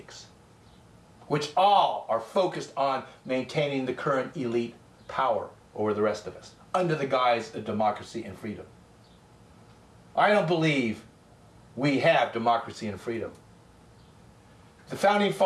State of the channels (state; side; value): identical; both; correlation 1.00